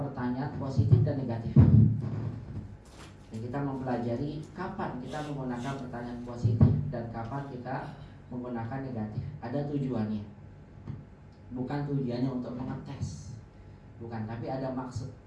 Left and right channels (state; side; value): identical; both; correlation 1.00